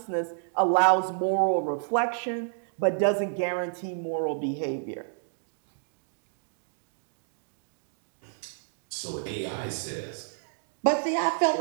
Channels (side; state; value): left; silent; digital silence